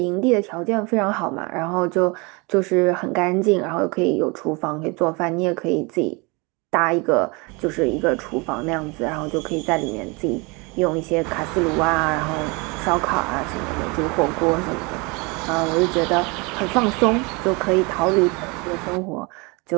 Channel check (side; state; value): left; quieter; 28.4 dB